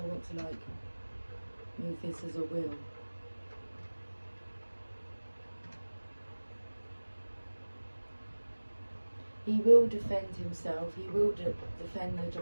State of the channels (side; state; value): both; inverted; correlation -1.00